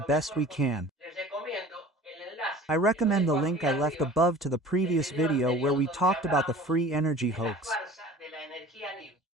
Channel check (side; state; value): both; normal; correlation 0.43